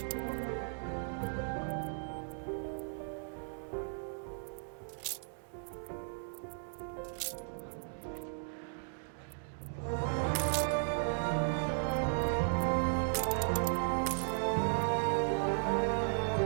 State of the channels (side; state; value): left; silent; digital silence